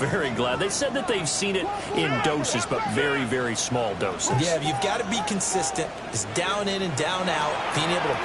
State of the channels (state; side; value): identical; both; correlation 1.00